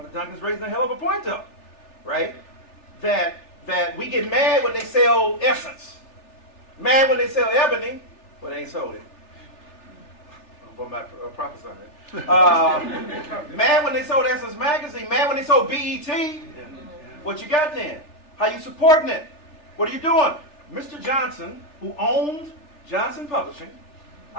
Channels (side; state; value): right; late; 3.4 ms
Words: Duncan's raising a hell of a point up, right? That we get mad when they sell Essence. Mad when they sell Ebony, but they ain't sold it. I'm not prophesying it. Mad when they sold Essence Magazine. Mad when they sold BET. What you got then? How you supporting it? What are you doing? Mr. Johnson, who owned Johnson Publishing,